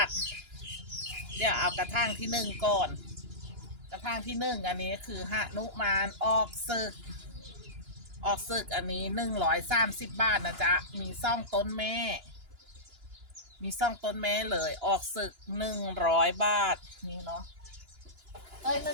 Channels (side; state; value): left; late; 2.9 ms